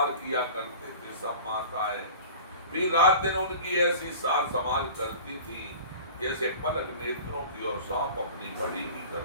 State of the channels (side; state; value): both; inverted; correlation -0.39